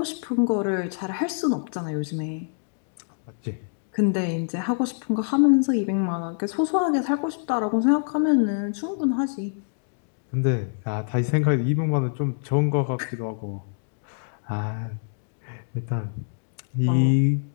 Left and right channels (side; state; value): right; silent; digital silence